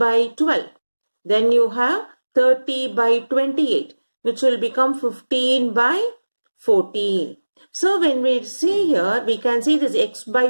12. Then you have 30 by 28. Which will become 15 by 14. So when we see here, we can see this x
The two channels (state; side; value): inverted; both; correlation -1.00